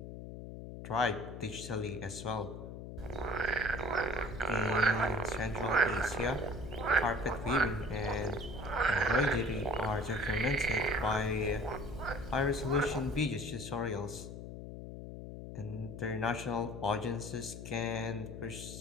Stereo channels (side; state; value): left; noise; hum, 10 dB below the sound